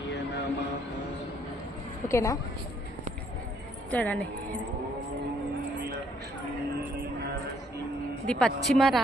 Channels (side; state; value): both; normal; correlation 0.67